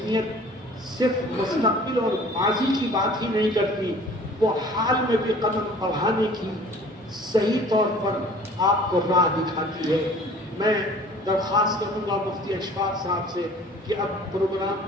صرف مستقبل اور ماضی کی بات ہی نہیں کرتی، وہ حال میں بھی قدم بڑھانے کی صحیح طور پر آپ کو راہ دکھاتی ہے۔ میں درخواست کروں گا مفتی اشفاق صاحب سے کہ اب پروگرام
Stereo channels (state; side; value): normal; both; correlation 0.48